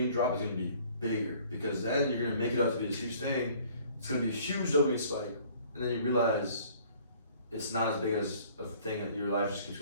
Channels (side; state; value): both; inverted; correlation -0.55